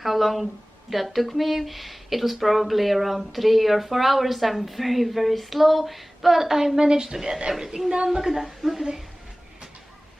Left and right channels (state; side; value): normal; both; correlation 0.98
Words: how long that took me. It was probably around 3 or 4 hours. I'm very slow, but I managed to get everything done. Look at that. Look at it.